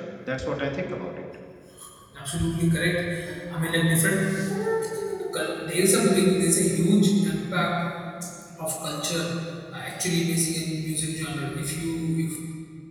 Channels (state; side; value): identical; both; correlation 1.00